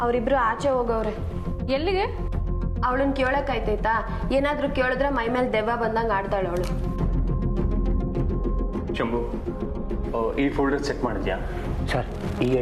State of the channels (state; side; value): identical; both; correlation 1.00